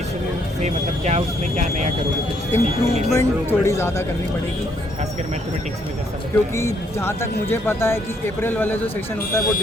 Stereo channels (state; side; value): normal; both; correlation 0.70